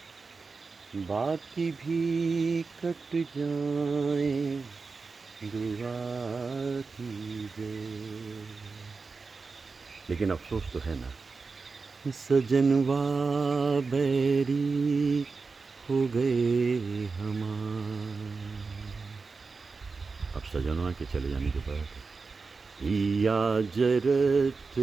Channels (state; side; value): quieter; left; 4.4 dB